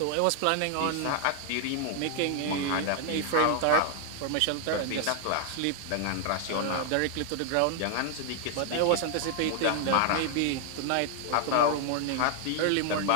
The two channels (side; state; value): both; different; correlation 0.00